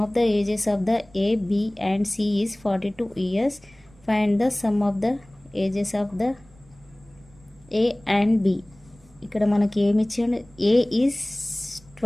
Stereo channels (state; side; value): noise; right; rumble, 27 dB below the sound